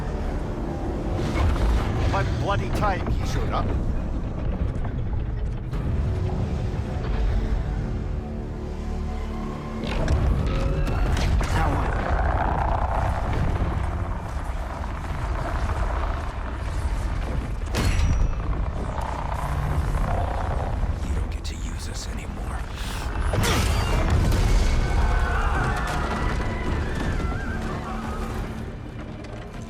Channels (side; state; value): both; identical; correlation 1.00